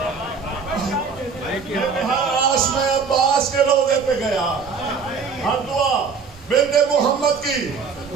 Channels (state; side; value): quieter; left; 5.4 dB